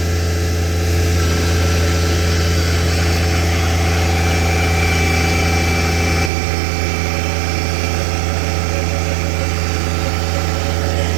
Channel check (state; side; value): drops out; left; at 6.3 s